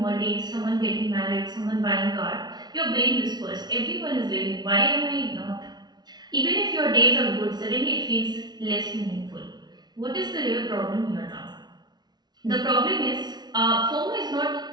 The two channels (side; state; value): left; late; 0.20 ms